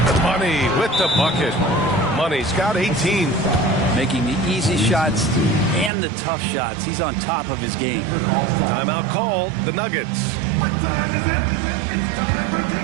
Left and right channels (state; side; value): drops out; left; at 5.9 s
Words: Money with the bucket. Money's got 18. Making the easy shots and the tough shots. He's on top of his game. Timeout called. The Nuggets. What time is it? It's time for